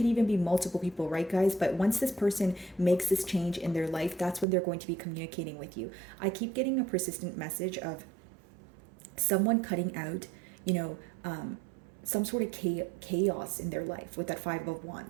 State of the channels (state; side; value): drops out; left; at 4.5 s